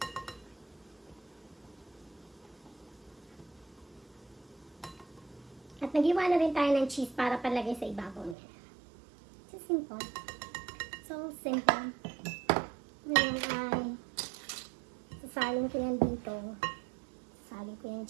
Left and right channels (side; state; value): left; drops out; at 8.3 s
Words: At nag-iwa na rin tayo ng cheese para palagay sa ibabaw niya. So simple. So simple. Ngayon ay sasalin ko yan dito. Sasalin ko yan